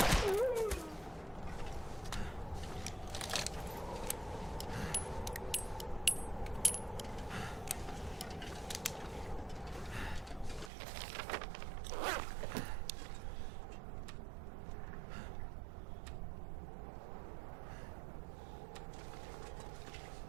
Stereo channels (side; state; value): left; drops out; at 10.7 s